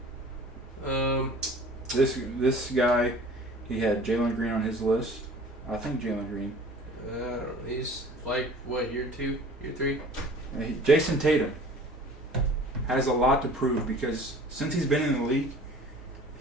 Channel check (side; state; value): both; normal; correlation 0.46